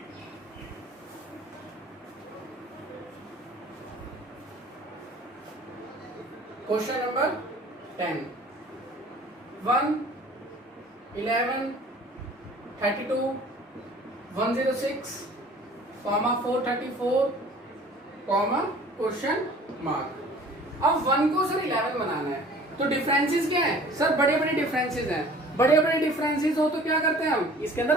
Question number 10, 1 11 32 106 434 question mark. अब 1 को सर 11 बनाना है, तो डिफरेंसेस क्या है सर, बड़े बड़े डिफरेंसेस हैं। बड़े बड़े डिफरेंसेस हो तो क्या करते हैं हम, इसके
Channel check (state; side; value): normal; both; correlation 0.48